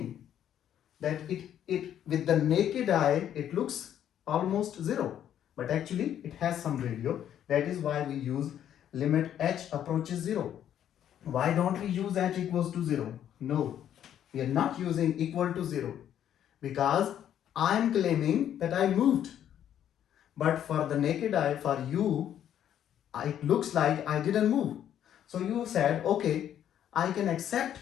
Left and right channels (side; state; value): right; quieter; 10.3 dB